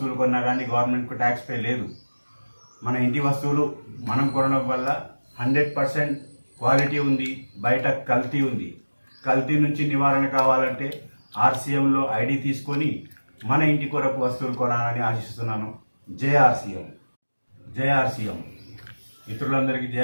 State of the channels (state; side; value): inverted; both; correlation -1.00